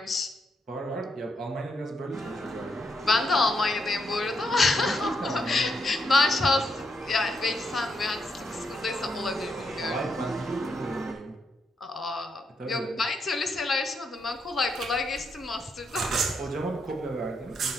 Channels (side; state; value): both; normal; correlation 0.79